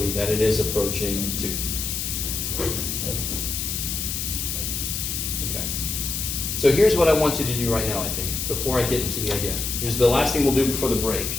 that it is approaching 2. Okay. So here's what I want you to do right now, I think, before I get into the idea. Here's the last thing we'll do before the break.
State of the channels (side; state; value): left; noise; hiss, 2 dB below the sound